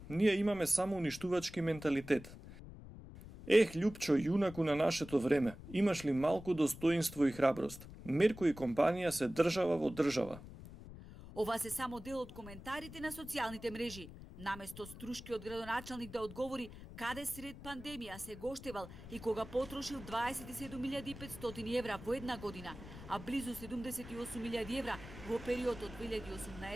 Ние имаме само уништувачки менталитет. Љупчо, јунаку на нашето време, имаш ли малку достоинство и храброст? Мерко и компанија се држава во држава. Ова се само дел од коментарите на социјалните мрежи. Наместо струшкиот градоначалник да одговори каде сред пандемија се гоштевал и кога потрошил 27.500 евра во една година, а близу 78.000 евра во период од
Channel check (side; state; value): left; noise; rumble, 14 dB below the sound